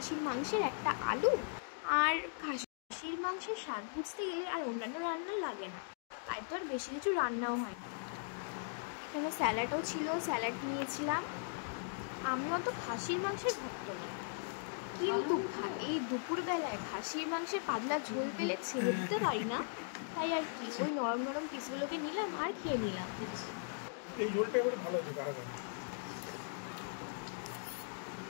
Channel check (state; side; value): silent; right; digital silence